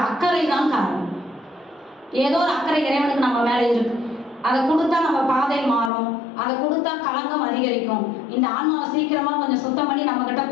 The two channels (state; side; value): drops out; right; at 5.9 s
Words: அக்கறை தான் காரணம். ஏதோ ஒரு அக்கறை இறைவனுக்கு நம்ம மேலே இருக்கு. அதை கொடுத்தா நம்ம பாதை மாறும், அதை கொடுத்தா களங்கம் அதிகரிக்கும், இந்த ஆன்மாவை சீக்கிரமா கொஞ்சம் சுத்தம் பண்ணி நம்ம கிட்ட